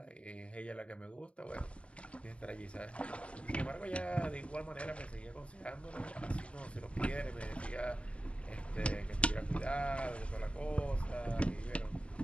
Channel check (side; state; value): right; late; 0.061 ms